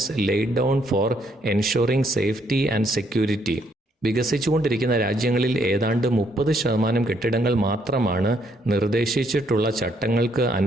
laid down for ensuring safety and security. വികസിച്ചുകൊണ്ടിരിക്കുന്ന രാജ്യങ്ങളിൽ ഏതാണ്ട് 30% കെട്ടിടങ്ങൾ മാത്രമാണ് നിർദ്ദേശിച്ചിട്ടുള്ള ചട്ടങ്ങൾക്ക്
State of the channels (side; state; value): both; normal; correlation 0.71